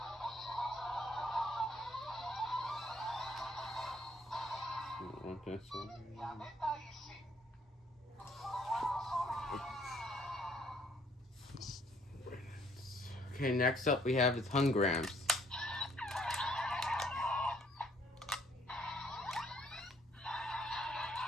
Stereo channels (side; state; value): both; normal; correlation 0.64